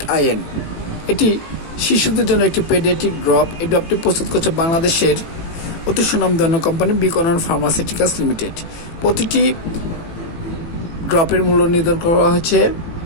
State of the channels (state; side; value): late; right; 18 ms